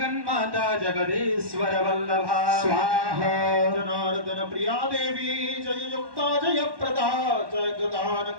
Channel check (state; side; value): late; left; 1.1 ms